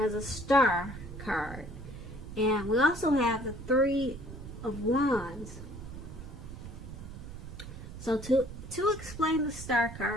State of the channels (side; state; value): right; noise; rumble, 11 dB below the sound